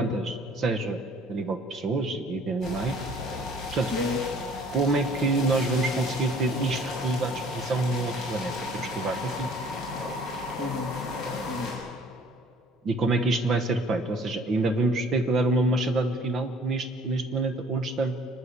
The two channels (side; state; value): both; normal; correlation 0.54